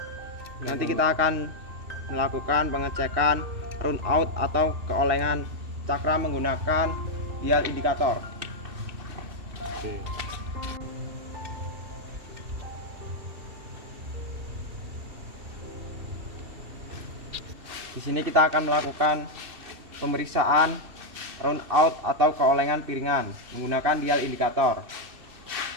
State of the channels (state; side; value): late; left; 2.6 ms